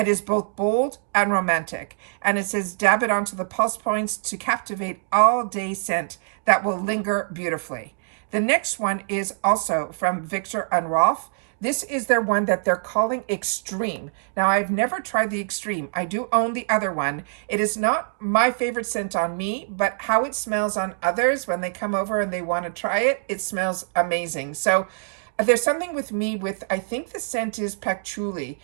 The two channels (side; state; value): left; silent; digital silence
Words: is both bold and romantic, and it says dab it onto the pulse points to captivate all-day scent that will linger beautifully. The next one is also from Viktor and Rolf. This is their one that they're calling Extreme. Now, I've never tried the Extreme. I do own the other one. It is not my favorite scent on me, but how it smells on others when they come over and they want to try it, it smells amazing. So there's something with me with, I think the scent is patchouli,